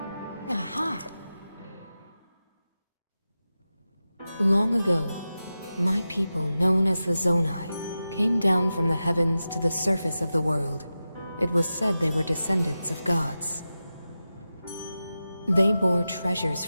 Aha! Long ago, my people, known as the Zonai, came down from the heavens to the surface of the world. It was said they were descendants of gods. They bore treasures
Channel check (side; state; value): both; inverted; correlation -0.93